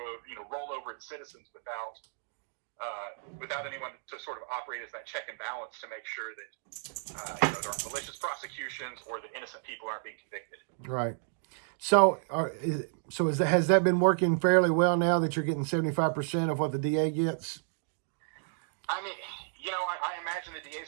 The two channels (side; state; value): left; silent; digital silence